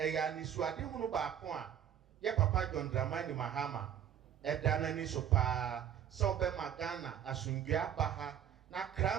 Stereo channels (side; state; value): left; quieter; 9.7 dB